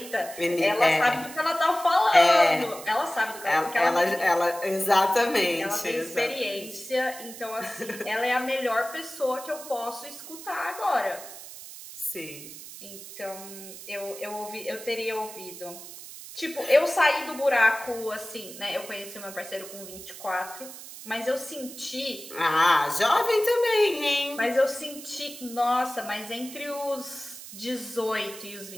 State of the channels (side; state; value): right; noise; hiss, 14 dB below the sound